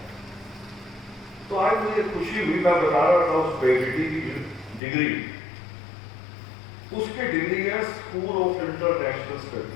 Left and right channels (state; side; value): drops out; right; at 4.8 s